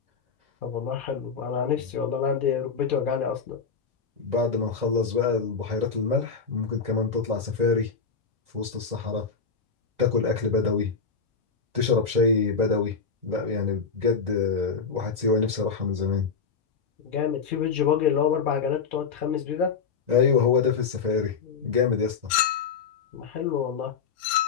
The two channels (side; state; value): right; quieter; 5.6 dB